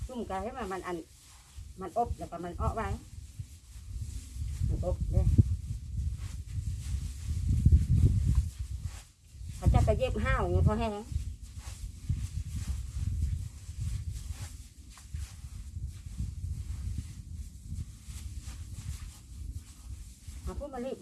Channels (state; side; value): identical; both; correlation 1.00